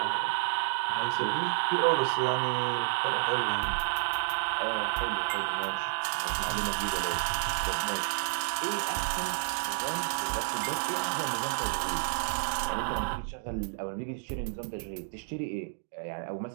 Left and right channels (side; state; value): left; silent; digital silence